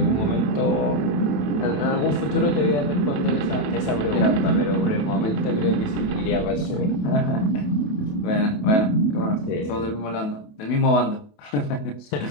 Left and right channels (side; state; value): right; late; 28 ms